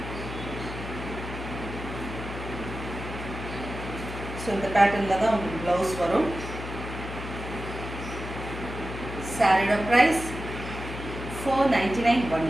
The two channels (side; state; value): left; noise; hum, 8 dB below the sound